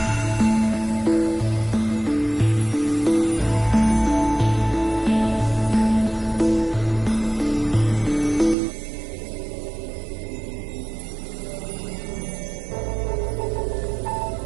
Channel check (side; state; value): left; drops out; at 8.6 s